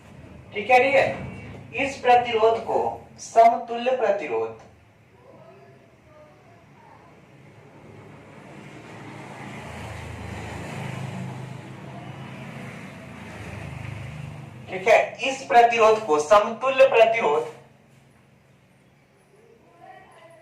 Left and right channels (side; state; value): both; identical; correlation 1.00